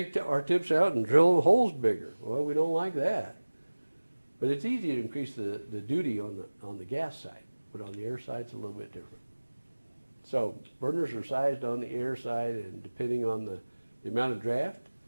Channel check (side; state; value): both; inverted; correlation -1.00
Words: our tips out and drill the holes bigger. Well, we don't like that. But it's easy to increase the duty on the gas side, but on the air side it's a little bit different. So burners are sized on the air side, and depending on the amount of draft,